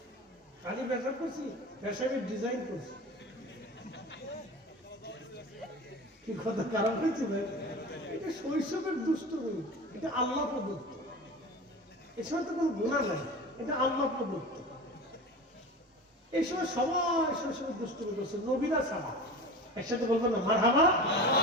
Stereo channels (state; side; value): normal; both; correlation 0.33